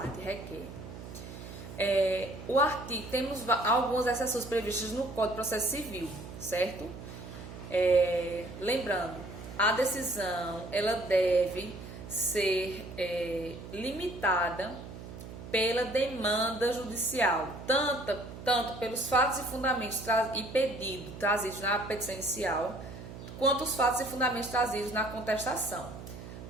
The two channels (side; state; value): right; noise; hum, 12 dB below the sound